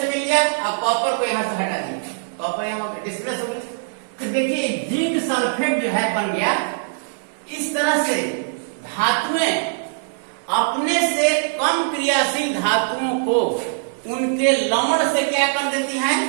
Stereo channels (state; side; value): silent; left; 64 dB below the other